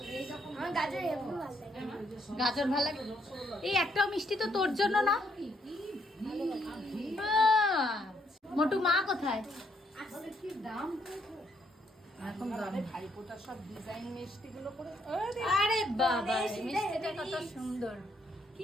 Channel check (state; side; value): normal; both; correlation 0.72